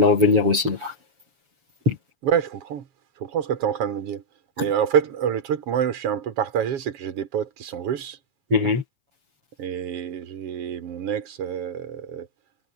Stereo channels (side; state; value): left; late; 7.1 ms